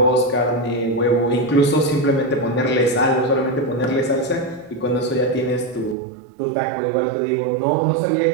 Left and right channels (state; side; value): drops out; left; at 6.0 s